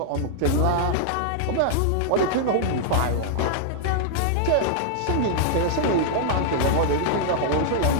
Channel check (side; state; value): both; different; correlation -0.01